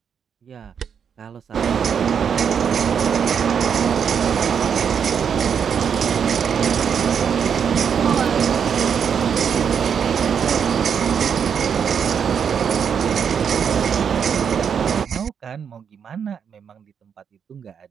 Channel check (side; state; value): left; quieter; 7.3 dB